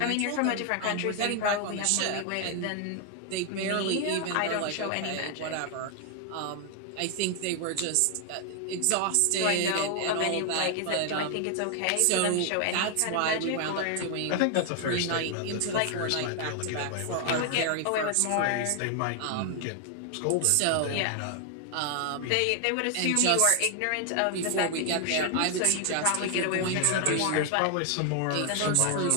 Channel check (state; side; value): different; both; correlation 0.00